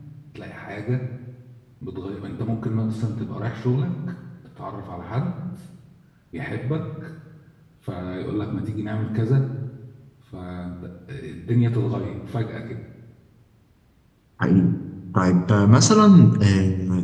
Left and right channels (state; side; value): identical; both; correlation 1.00